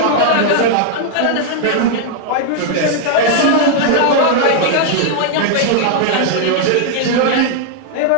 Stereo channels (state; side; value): different; both; correlation -0.01